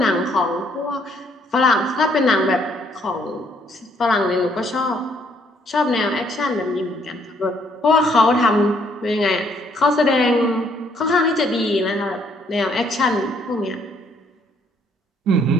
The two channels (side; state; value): both; normal; correlation 0.67